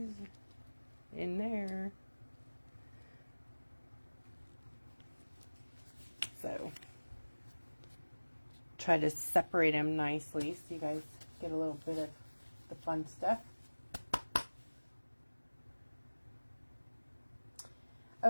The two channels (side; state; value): both; inverted; correlation -1.00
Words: in there. So try to separate them nicely so you guys get a little bit of the fun stuff.